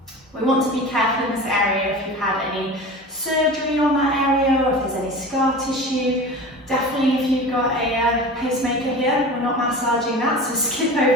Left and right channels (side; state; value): both; normal; correlation 0.34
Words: We want to be careful in this area if you've had any surgery on that area or if there's any scar tissue. Definitely if you've got a pacemaker here, we're not massaging that, so skip